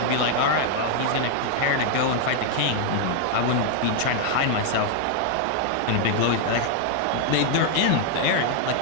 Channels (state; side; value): different; both; correlation 0.00